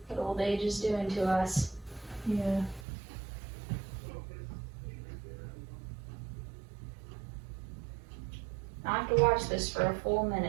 What old age is doing to us. Yeah. I have to watch this for a full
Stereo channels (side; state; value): left; drops out; at 2.9 s